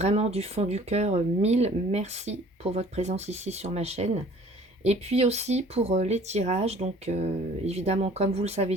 du fond du cœur, mille merci pour votre présence ici sur ma chaîne. Et puis aussi pour les tirages, donc évidemment comme vous le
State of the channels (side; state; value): both; normal; correlation 0.51